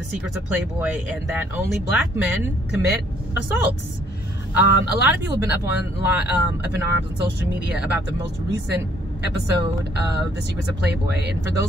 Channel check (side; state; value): both; normal; correlation 0.64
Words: secrets of Playboy and that only black men commit assaults. A lot of people have been up in arms on social media about the most recent episode of The Secrets of Playboy. And for